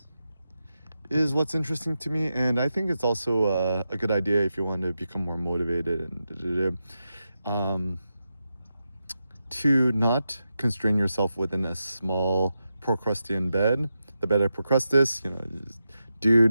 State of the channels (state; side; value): inverted; both; correlation -0.89